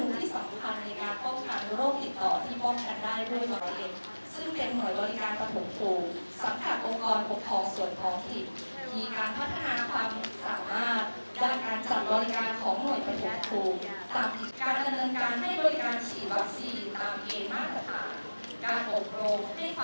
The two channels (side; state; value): both; inverted; correlation -1.00